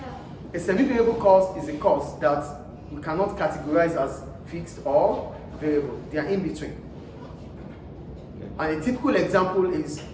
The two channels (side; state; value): both; identical; correlation 1.00